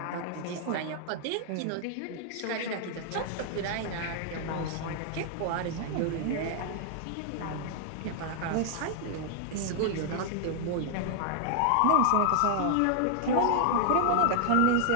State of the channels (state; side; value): different; both; correlation 0.00